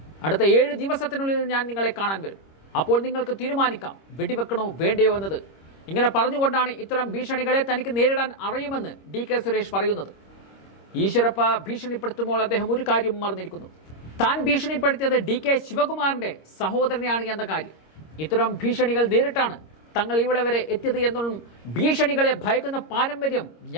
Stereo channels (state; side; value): late; right; 26 ms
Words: അടുത്ത 7 ദിവസത്തിനുള്ളിൽ ഞാൻ നിങ്ങളെ കാണാൻ വരും. അപ്പോൾ നിങ്ങൾക്ക് തീരുമാനിക്കാം വെടിവെക്കണോ വേണ്ടയോ എന്നത്. ഇങ്ങനെ പറഞ്ഞുകൊണ്ടാണ് ഇത്തരം ഭീഷണികളെ തനിക്ക് നേരിടാൻ അറിയുമെന്ന് ഡി.കെ. സുരേഷ് പറയുന്നത്. ഈശ്വരപ്പ ഭീഷണിപ്പെടുത്തുമ്പോൾ അദ്ദേഹം ഒരു കാര്യം മറന്നിരിക്കുന്നു. താൻ ഭീഷണിപ്പെടുത്തിയത് ഡി.കെ. ശിവകുമാറിന്റെ സഹോദരനെയാണ് എന്ന കാര്യം. ഇത്തരം ഭീഷണികൾ നേരിട്ടാണ് തങ്ങൾ ഇവിടെ വരെ എത്തിയത് എന്നും ഭീഷണികളെ ഭയക്കുന്ന പാരമ്പര്യം